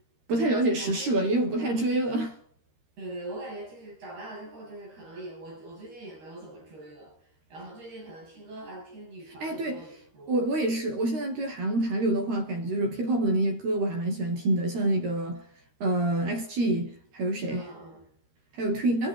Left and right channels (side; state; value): left; late; 13 ms